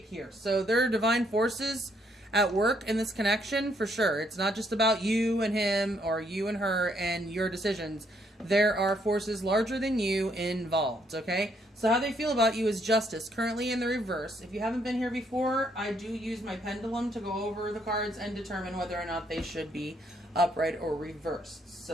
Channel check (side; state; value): both; normal; correlation 0.71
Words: here. So there are divine forces at work in this connection for sure. It's not just about you and him or you and her and your decisions. There are forces larger than you involved, okay? So how they feel about you is Justice, currently in the reverse. If you haven't been here before, I do use my pendulum to go over the cards and determine whether or not they should be upright or reversed.